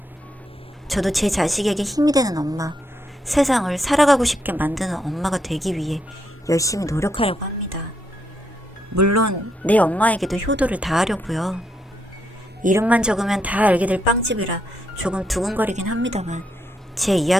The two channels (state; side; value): normal; both; correlation 0.78